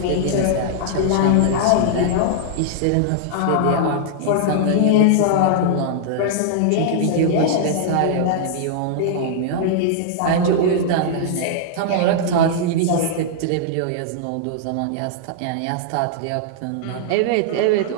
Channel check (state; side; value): different; both; correlation -0.01